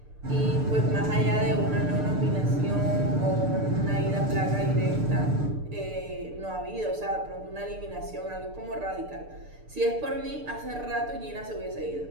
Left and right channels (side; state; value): left; late; 6.7 ms